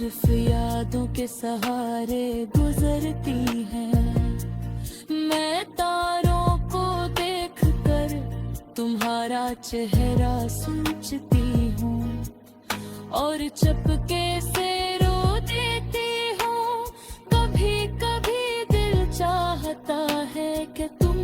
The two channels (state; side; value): identical; both; correlation 1.00